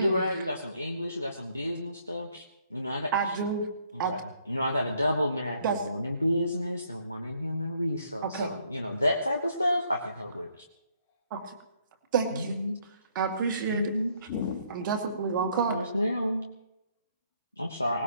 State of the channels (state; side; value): inverted; both; correlation -0.68